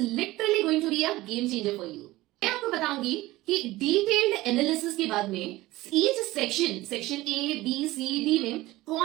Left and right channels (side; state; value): left; quieter; 18.2 dB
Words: going to be a game changer for you. मैं आपको बताऊंगी कि डिटेल्ड एनालिसिस के बाद में each section A B C D में